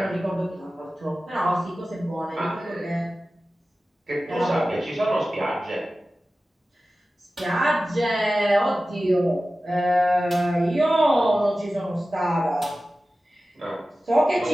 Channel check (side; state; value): both; normal; correlation 0.95